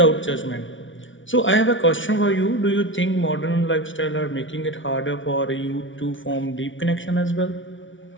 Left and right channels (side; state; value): right; late; 0.56 ms